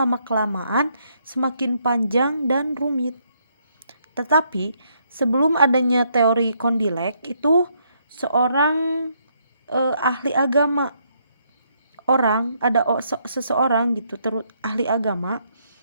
semakin panjang dan rumit. Tetapi sebelum adanya teori Condillac itu seorang ahli agama, seseorang gitu ahli agama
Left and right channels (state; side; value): inverted; both; correlation -0.73